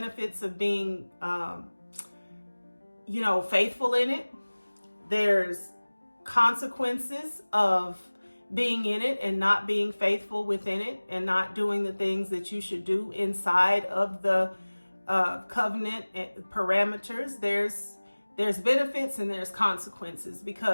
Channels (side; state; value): both; inverted; correlation -1.00